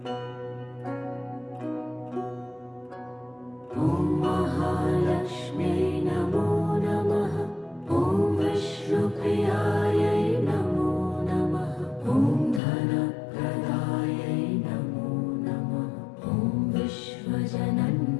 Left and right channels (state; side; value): drops out; right; at 12.6 s